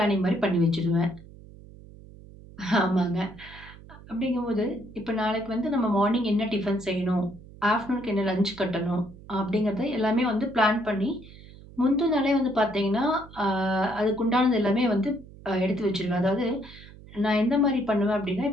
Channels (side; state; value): right; noise; hum, 19 dB below the sound